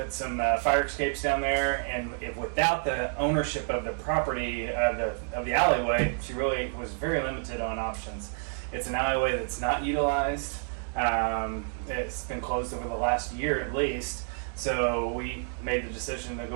some fire escapes down there. And without the ownership of the property of the alleyway, she really was very limited on options. It's an alleyway that's not utilized. It's been closed over the last year at least. So we made the decision to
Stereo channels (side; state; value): left; silent; 58 dB below the other